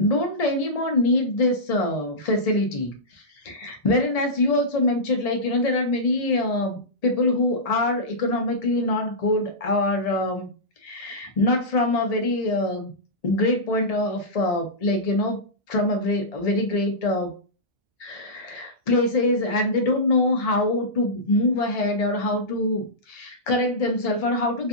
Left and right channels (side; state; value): both; normal; correlation -0.15